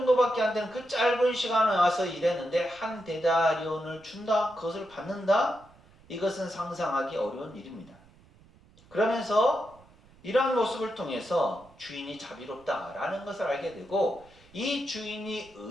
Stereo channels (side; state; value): right; noise; rumble, 27 dB below the sound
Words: 안 되는 그 짧은 시간에 와서 일했는데 한 데나리온을 준다? 그것을 받는다? 이것은 상상하기 어려운 일입니다. 그러면서 이러한 모습을 통해서 주인이 자비롭다라는 것을 알게 되고 이 주인이